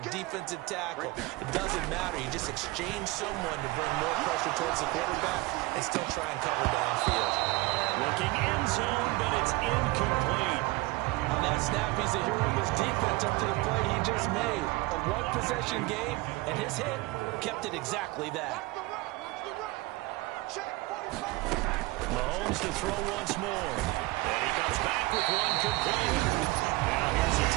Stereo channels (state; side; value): quieter; left; 21.6 dB